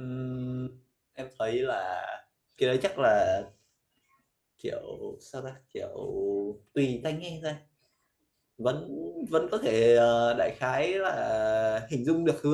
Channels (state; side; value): identical; both; correlation 1.00